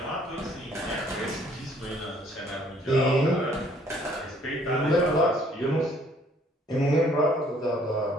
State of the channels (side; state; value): both; normal; correlation 0.61